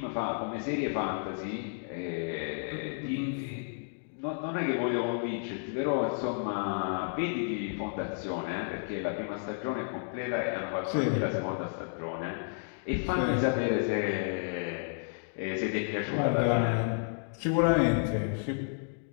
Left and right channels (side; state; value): right; silent; digital silence